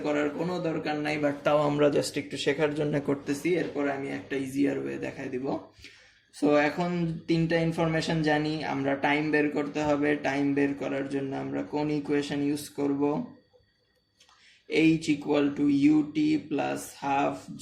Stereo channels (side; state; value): both; identical; correlation 1.00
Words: করার কোনো দরকার নাই, বাট তাও আমরা জাস্ট একটু শেখার জন্য করতেছি, এরপর আমি একটা ইজিয়ার ওয়ে দেখাই দিব। সো এখন তিনটা ইনফরমেশন জানি, আমরা টাইম বের করতে হবে। টাইম বের করার জন্য আমরা কোন ইকুয়েশন ইউজ করব? h = ut plus half